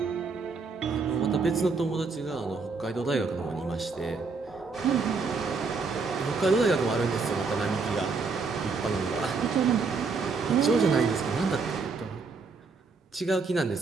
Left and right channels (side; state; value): left; quieter; 4.5 dB